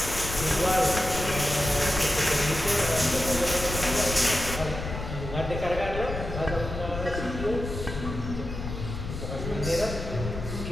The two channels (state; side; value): noise; left; rumble, 7 dB below the sound